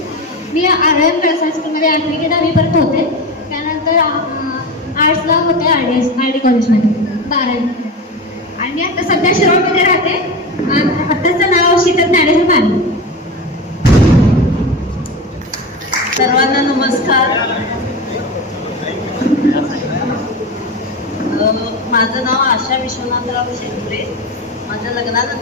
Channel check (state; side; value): normal; both; correlation 0.23